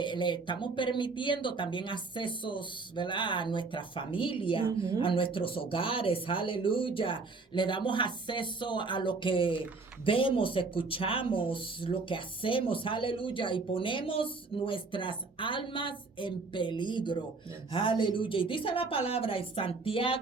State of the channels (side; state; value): left; quieter; 4.0 dB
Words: estamos permitiendo también accesos, ¿verdad?, a nuestra familia, a nuestros hogares, aleluya. Le damos acceso a lo que vemos, escuchamos, lo que hacemos, aleluya. Y ponemos nuestras almas en peligro, aleluya. Y dice la palabra en